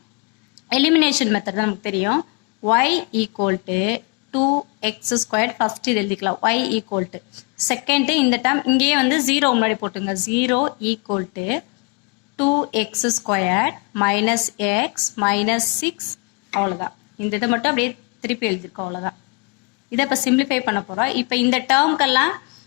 எலிமினேஷன் மெத்தட் தான் நமக்கு தெரியும். y equal to 2x squared first இது எழுதிக்கலாம். y equal to செகண்ட் இந்த டேர்ம் இங்கேயே வந்து 0 முன்னாடி போட்டுங்க. 0 equal to 2x squared minus x minus 6. அவ்வளோதான். இந்த இதை மட்டும் அப்படியே திருப்பி எழுதிருக்கோம். அவ்வளோதான். இதை இப்போ சிம்பிளிஃபை பண்ண போகிறோம். இப்போ இந்த டேர்ம்க்கெல்லாம்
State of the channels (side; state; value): right; quieter; 31.7 dB